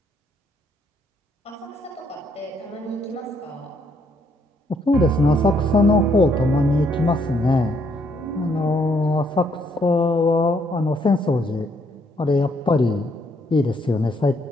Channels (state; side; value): normal; both; correlation 0.71